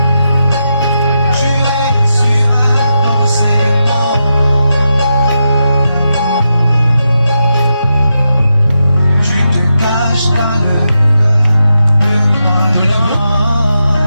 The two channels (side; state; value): both; inverted; correlation -0.87